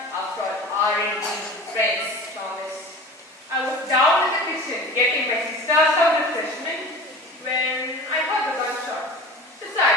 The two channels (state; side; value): normal; both; correlation 0.37